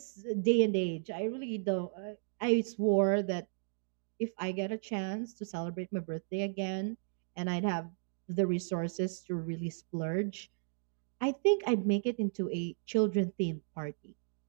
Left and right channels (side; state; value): left; silent; digital silence